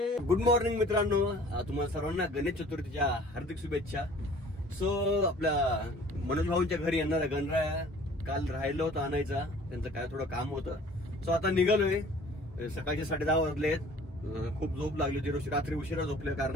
गुड मॉर्निंग मित्रांनो, तुम्हाला सर्वांना गणेश चतुर्थीच्या हार्दिक शुभेच्छा. सो आपल्या मनोज भाऊंच्या घरी येणारा गणराया काल राहिलं होतं आणायचा, त्यांचं काय थोडं काम होतं. सो आता निघालोय. सकाळचे 10:30 वाजलेत. खूप झोप लागली होती, रात्री उशिरा झोपल्या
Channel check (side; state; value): both; normal; correlation 0.50